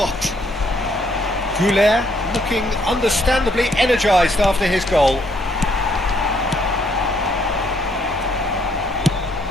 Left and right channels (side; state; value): both; normal; correlation 0.69